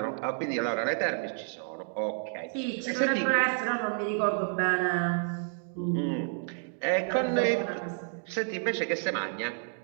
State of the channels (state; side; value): silent; left; digital silence